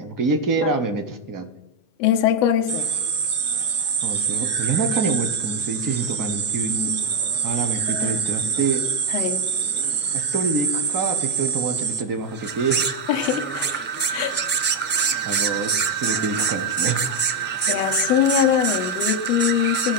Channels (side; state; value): right; late; 8.1 ms